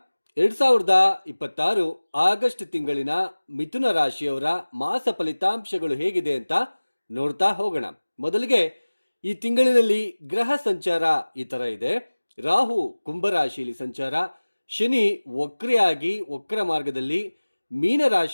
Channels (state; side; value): inverted; both; correlation -1.00